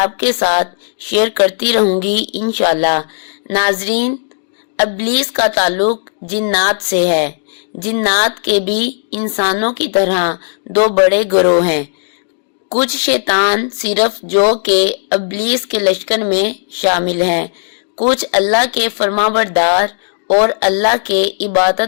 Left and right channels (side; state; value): right; silent; digital silence